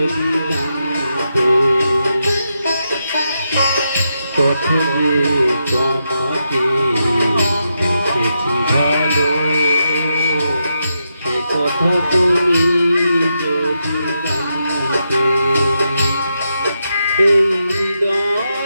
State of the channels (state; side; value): inverted; both; correlation -0.85